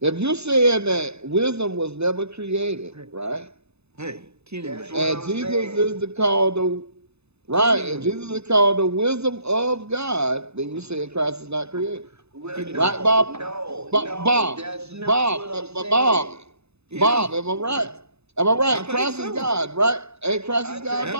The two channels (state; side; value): late; left; 0.80 ms